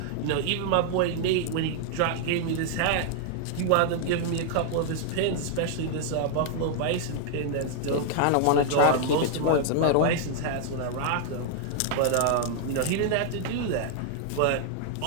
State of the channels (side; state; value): both; different; correlation 0.00